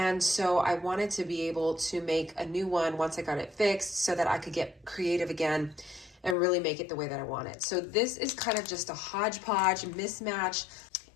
so I wanted to be able to make a new one once I got it fixed so that I could get creative again and really make it the way that I want it. So this is kind of just a hodgepodge mismatch,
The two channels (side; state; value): right; drops out; at 6.4 s